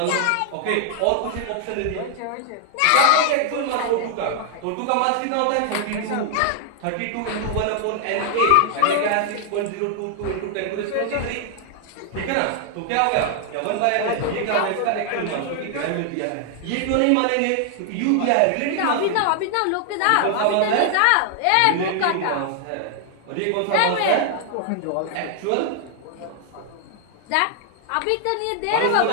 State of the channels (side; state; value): both; different; correlation 0.00